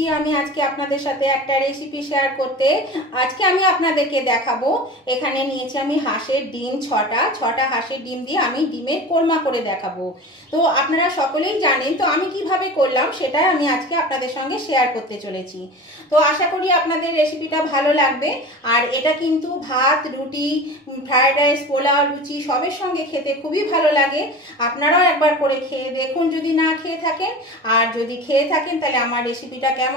আমি আজকে আপনাদের সাথে একটা রেসিপি শেয়ার করতে। আজকে আমি আপনাদেরকে দেখাবো, এখানে নিয়েছি আমি হাঁসের ডিম ছটা হাঁসের ডিম দিয়ে আমি ডিমের কোরমা করে দেখাবো। তো আপনারা সকলেই জানেন, তো আমি কিভাবে করলাম সেটা আমি আজকে আপনাদের সঙ্গে শেয়ার করতে চলেছি। তো আশা করি আপনাদের রেসিপিটা ভালো লাগবে। আর এটা কিন্তু ভাত, রুটি, ফ্রায়েড রাইস, পোলাও, লুচি সবের সঙ্গে খেতে খুবই ভালো লাগে। আপনারাও একবার করে খেয়ে দেখুন যদি না খেয়ে থাকেন, আর যদি খেয়ে থাকেন তাহলে আমার রেসিপিটা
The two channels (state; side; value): normal; both; correlation 0.34